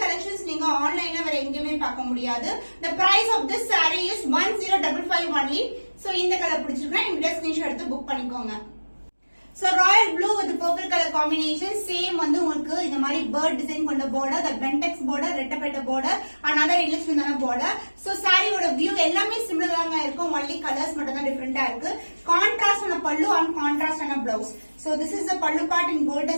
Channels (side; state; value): both; inverted; correlation -1.00